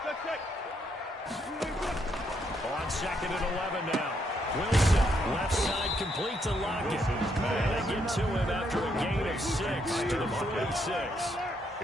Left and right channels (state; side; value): normal; both; correlation 0.75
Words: On 2nd and 11 now. Wilson, left side complete to Lockett. And they get to him after a gain of 6 to the 46.